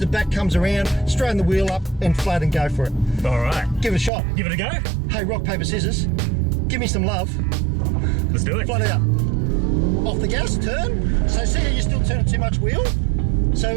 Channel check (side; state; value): left; drops out; at 4.1 s